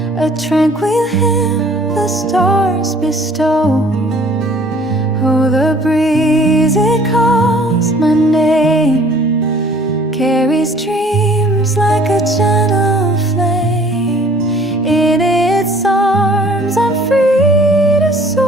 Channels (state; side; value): normal; both; correlation 0.54